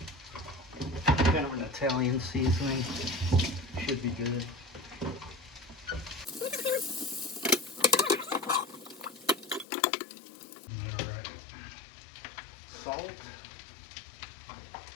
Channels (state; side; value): drops out; right; at 9.7 s